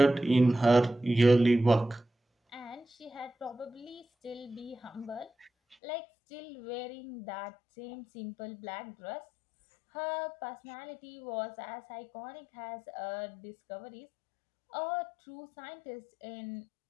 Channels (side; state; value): right; drops out; at 5.8 s